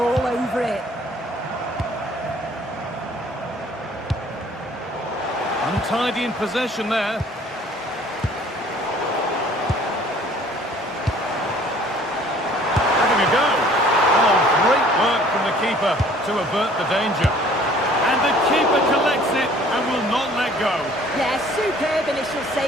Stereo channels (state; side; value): normal; both; correlation 0.54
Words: over it. Untidy in possession there. Having a go. Oh, great work from the keeper to avert the danger. And the keeper collects it and will not let go. Yeah, superb initial